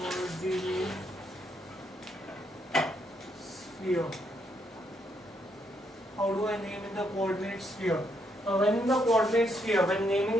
sphere. How do I name in the coordinate sphere? When in the coordinate sphere, when naming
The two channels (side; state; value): both; normal; correlation 0.75